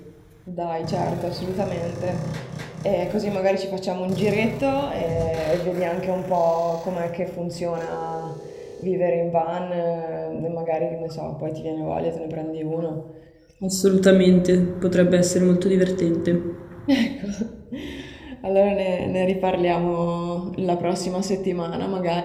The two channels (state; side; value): identical; both; correlation 1.00